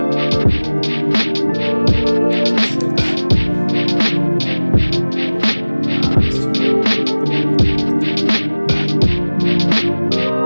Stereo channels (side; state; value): both; inverted; correlation -1.00